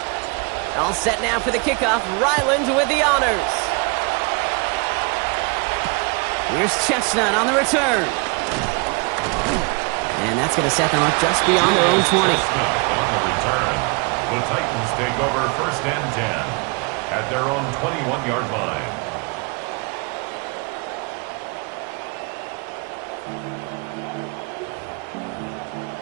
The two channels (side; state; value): left; quieter; 31.3 dB